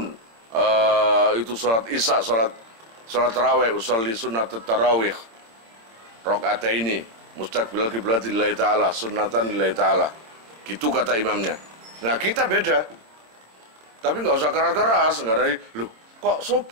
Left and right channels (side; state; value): left; late; 26 ms